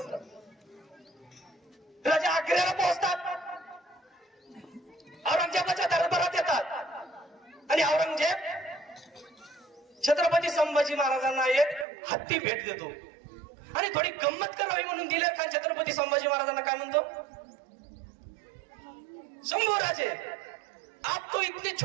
राजे आग्र्याला पोहोचतात, औरंगजेबाच्या दरबारात येतात आणि औरंगजेब छत्रपती संभाजी महाराजांना एक हत्ती भेट देतो. आणि थोडी गंमत करावी म्हणून दिलेर खान छत्रपती संभाजी महाराजांना काय म्हणतो, शंभू राजे आप तो इतने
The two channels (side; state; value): left; drops out; at 11.9 s